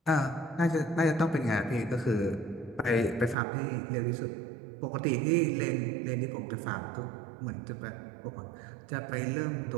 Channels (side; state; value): left; drops out; at 3.4 s